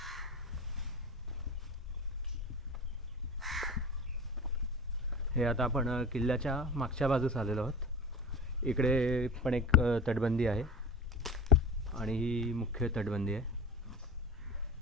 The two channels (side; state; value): both; normal; correlation 0.34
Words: हे आता आपण किल्ल्याच्या मागच्या बाजूस आलेलो आहोत. इकडे पण एक तटबंदी आहे आणि ही मुख्य तटबंदी आहे.